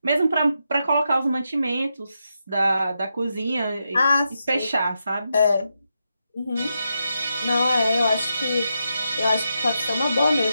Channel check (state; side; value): inverted; both; correlation -0.85